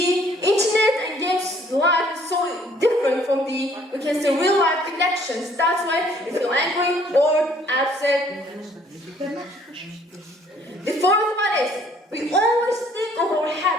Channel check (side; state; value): both; normal; correlation 0.61